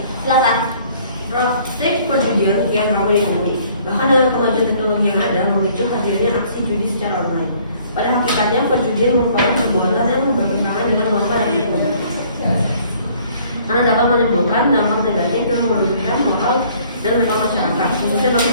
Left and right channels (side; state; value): both; inverted; correlation -0.58